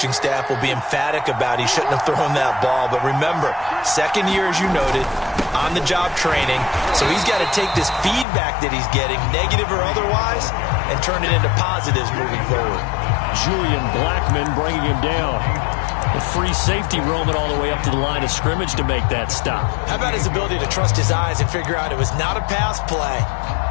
staff will be emphatic about he shouldn't have thrown that ball. But remember, second year, as you noted, on-the-job training, so he's got to take this feedback that he's getting, negative or otherwise, and turn it into positives moving forward. Julian Blackman bringing him down. A free safety roaming all the way up to the line of scrimmage to make that stop. How about his ability to trust his eyes and figure out it was not a pass play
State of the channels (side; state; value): right; drops out; at 8.2 s